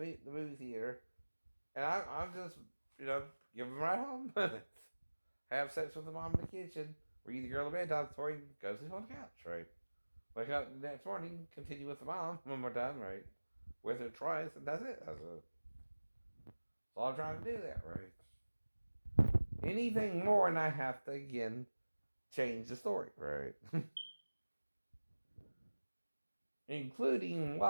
movie theater. And I'm just, give them right home. Have sex with the mom in the kitchen. Read the girl a bedtime story, go sleep on the couch, right? Wake up the next morning, continue with the mom when we're done, right? With her twice, and that's it. That's all I'm trying to do there, right? anything more, and I have to again change the story, right? Including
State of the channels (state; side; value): inverted; both; correlation -1.00